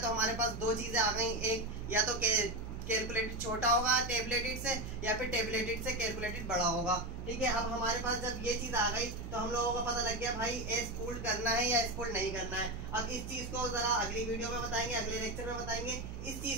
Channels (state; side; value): noise; right; hum, 9 dB below the sound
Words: हमारे पास दो चीजें आ गई, एक या तो कैलकुलेटेड छोटा होगा टेबलेटेड से, या फिर टेबलेटेड से कैलकुलेटेड बड़ा होगा। ठीक है, अब हमारे पास जब ये चीज आ गई तो हम लोगों को पता लग गया भाई एस पुल्ड करना है या एस पुल्ड नहीं करना है। अब इस चीज को जरा अगली वीडियो में बताएंगे, अगले लेक्चर में बताएंगे। इस